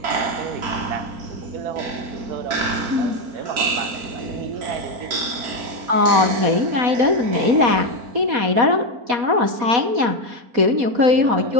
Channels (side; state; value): left; late; 4.1 ms